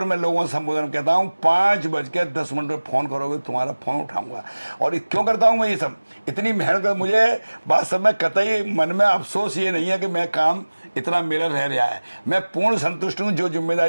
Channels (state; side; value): inverted; both; correlation -1.00